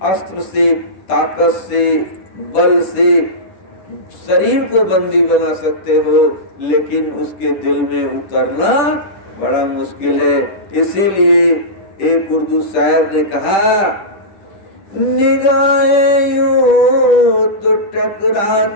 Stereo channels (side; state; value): right; late; 10 ms